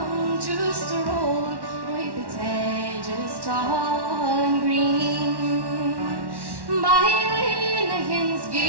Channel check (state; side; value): late; left; 1.1 ms